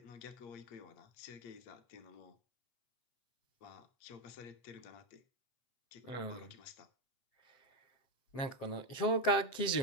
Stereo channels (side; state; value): right; late; 7.6 ms